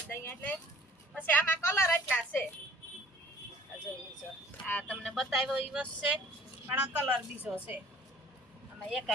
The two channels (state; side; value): normal; both; correlation 0.52